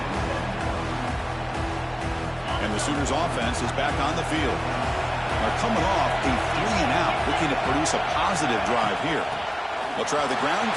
And the Sooners offense is back on the field. They're coming off a 3-and-out, looking to produce a positive drive here. They'll try the ground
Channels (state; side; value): identical; both; correlation 1.00